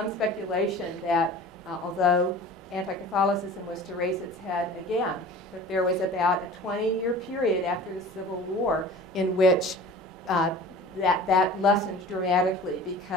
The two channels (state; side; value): normal; both; correlation 0.41